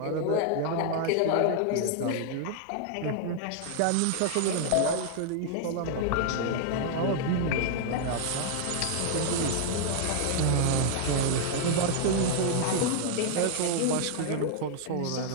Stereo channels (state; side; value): different; both; correlation -0.01